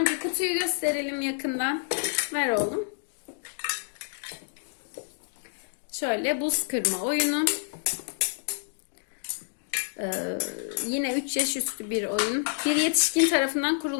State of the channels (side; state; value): right; silent; digital silence